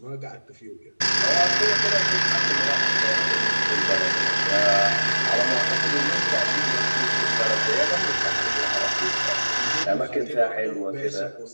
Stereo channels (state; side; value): inverted; both; correlation -1.00